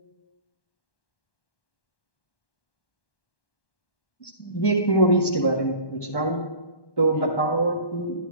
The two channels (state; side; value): late; right; 1.1 ms